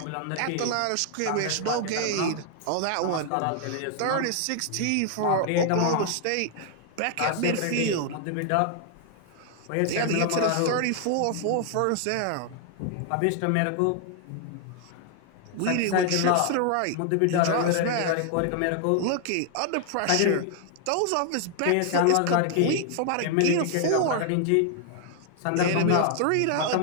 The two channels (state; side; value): different; both; correlation 0.00